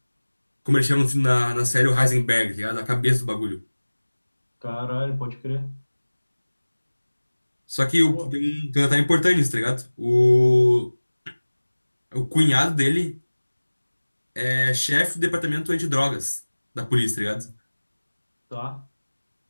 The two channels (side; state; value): both; inverted; correlation -1.00